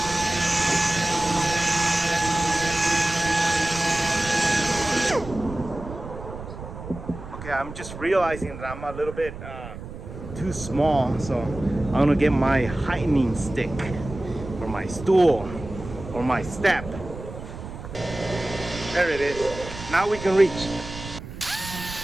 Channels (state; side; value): noise; right; rumble, 11 dB below the sound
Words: Okay, I'm just realizing that I'm a little bit too small, so I'm gonna get my heightening stick or my stool or my step. There it is. Now we can reach.